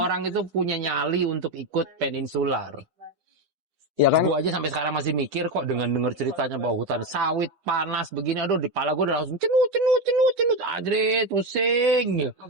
orang itu punya nyali untuk ikut peninsular. ya kan Gua aja sampai sekarang masih mikir kok dengan denger ceritanya bahwa hutan sawit panas begini, aduh di kepala gua udah langsung cenut, ajrit, pusing.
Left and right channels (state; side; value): late; left; 10 ms